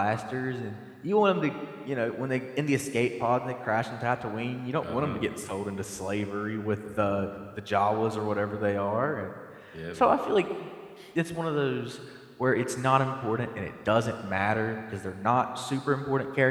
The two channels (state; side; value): identical; both; correlation 1.00